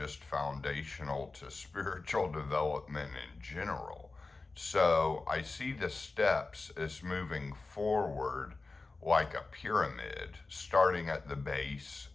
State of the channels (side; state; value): right; quieter; 3.6 dB